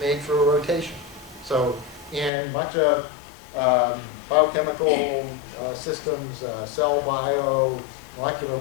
through a rotation. So in much of biochemical systems, cell bio, molecular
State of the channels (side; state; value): right; drops out; at 2.3 s